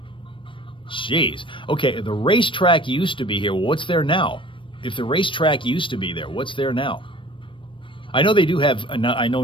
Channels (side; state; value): right; late; 0.25 ms